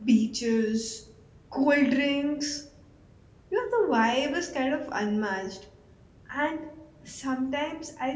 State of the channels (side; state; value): both; identical; correlation 1.00